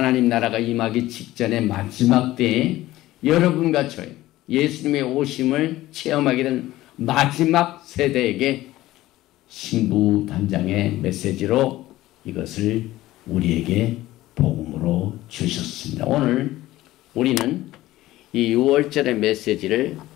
나라가 임하기 직전의 마지막 때에 여러분과 저희 예수님의 오심을 체험하게 된 마지막 세대에게 신부 단장의 메시지로 이것을 우리에게 복음으로 주셨습니다. 오늘 우리는 이 6월절의 메시지를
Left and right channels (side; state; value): right; quieter; 16.3 dB